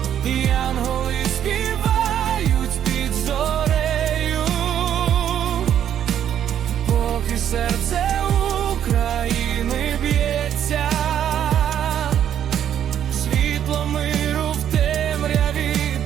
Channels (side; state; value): left; quieter; 9.9 dB